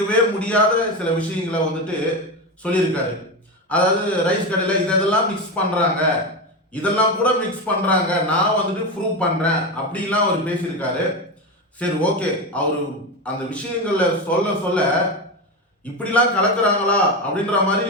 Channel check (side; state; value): both; normal; correlation 0.17